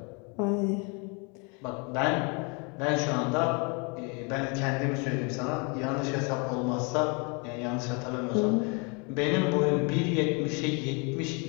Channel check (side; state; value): right; quieter; 32.9 dB